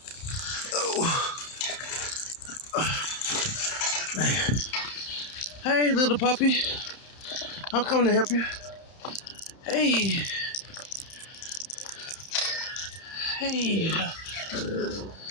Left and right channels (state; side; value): late; right; 31 ms